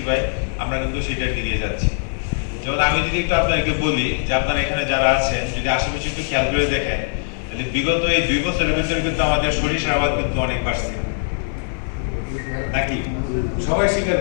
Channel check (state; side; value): silent; right; 58 dB below the other